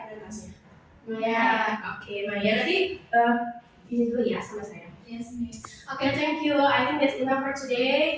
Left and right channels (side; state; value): both; identical; correlation 1.00